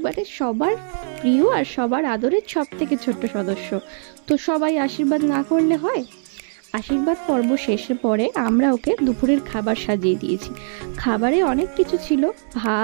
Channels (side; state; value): left; silent; digital silence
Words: সবার প্রিয় আর সবার আদরের সব থেকে ছোট্ট সদস্য, তো সবাই আশীর্বাদ না করলে হয়? আশীর্বাদ পর্ব শেষের পরে আমরা ওকে দুপুরের খাবার সাজিয়ে দিয়েছি। খাবারে অনেক কিছু ছিল,